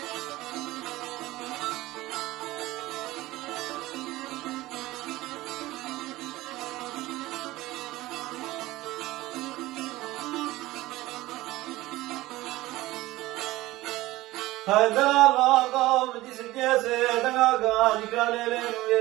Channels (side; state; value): left; quieter; 18.0 dB